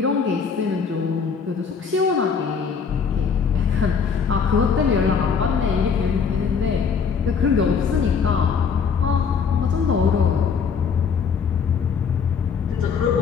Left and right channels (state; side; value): quieter; right; 6.1 dB